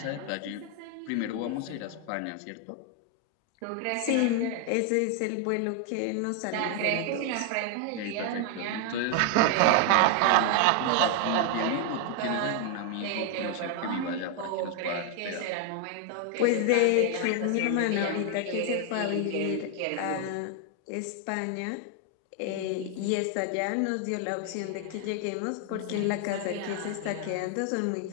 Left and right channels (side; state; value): both; different; correlation 0.00